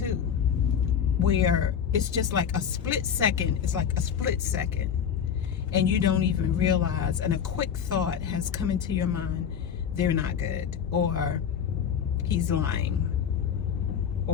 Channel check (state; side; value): quieter; right; 7.9 dB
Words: where it's just like a split second. It's like a split second. And you don't even realize, and a quick thought has come into your mind, they're not good, or he's lying,